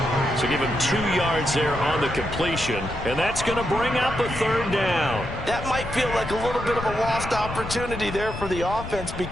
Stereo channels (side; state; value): left; noise; rumble, 9 dB below the sound